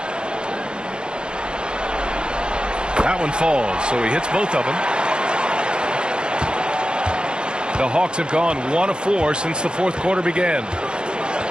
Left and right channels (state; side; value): late; left; 0.050 ms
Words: That one falls, so he hits both of them. The Hawks have gone 1 of 4 since the fourth quarter began.